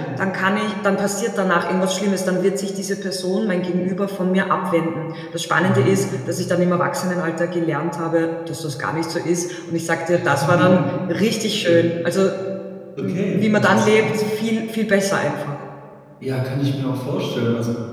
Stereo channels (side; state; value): both; identical; correlation 1.00